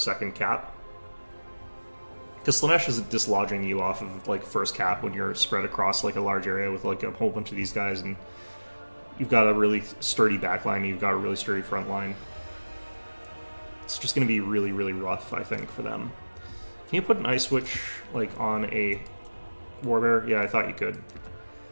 cap. Because Slaanesh is dislodging you off of like first cap when you're spread across like a large area with like a whole bunch of these guys, and you've got a really sturdy backline, and you've got a really sturdy front line. It's just going to be really, really rough, I think, for them. Can you put an Ice Witch like on a Warbear? Yeah, I thought you could.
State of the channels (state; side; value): inverted; both; correlation -1.00